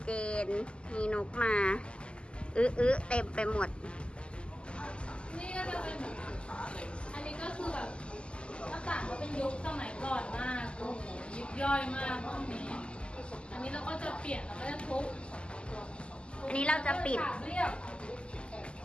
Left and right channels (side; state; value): right; late; 0.052 ms